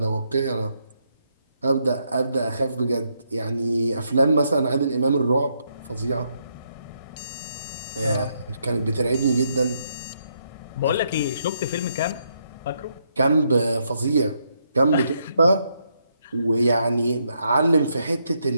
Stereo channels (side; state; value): both; inverted; correlation -0.77